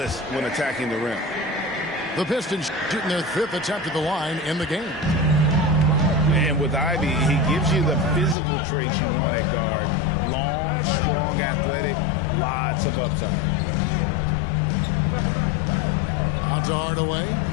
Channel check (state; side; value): drops out; right; at 8.3 s